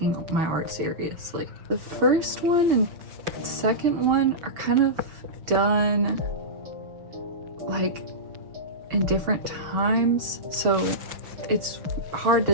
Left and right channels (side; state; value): left; late; 6.0 ms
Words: my art seriously. The first one and second one are kind of done like in different times, so it's hard